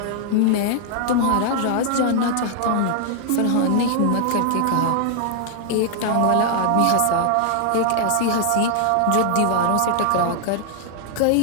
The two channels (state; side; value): different; both; correlation 0.00